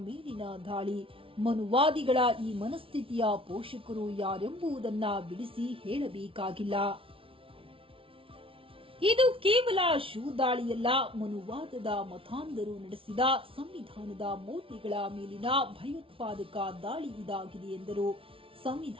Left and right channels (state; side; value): late; left; 0.26 ms